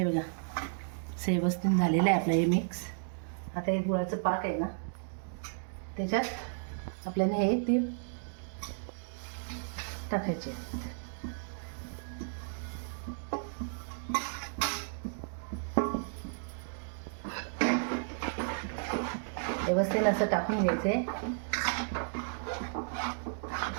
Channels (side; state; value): left; silent; digital silence